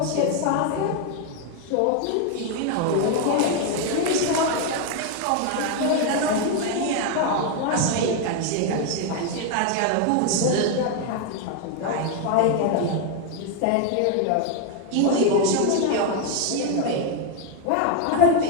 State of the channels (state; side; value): different; both; correlation 0.01